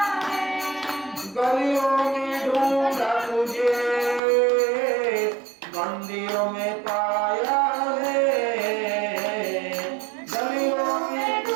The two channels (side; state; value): left; drops out; at 4.2 s